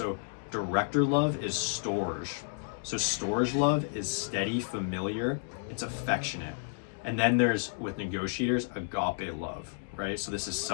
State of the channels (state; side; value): silent; right; digital silence